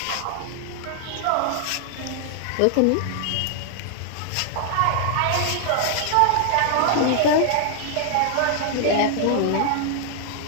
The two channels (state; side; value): different; both; correlation 0.00